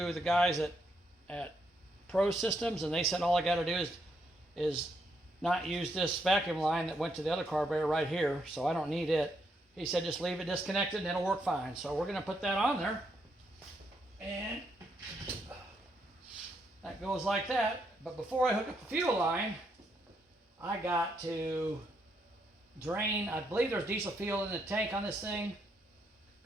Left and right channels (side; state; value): both; normal; correlation 0.77